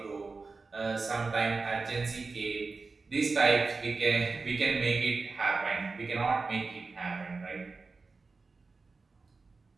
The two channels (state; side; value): quieter; left; 4.1 dB